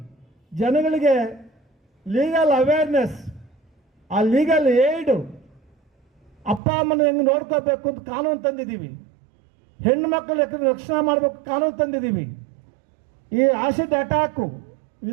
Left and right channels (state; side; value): drops out; left; at 6.6 s